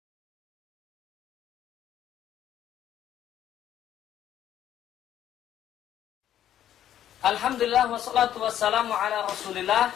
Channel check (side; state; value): right; quieter; 11.1 dB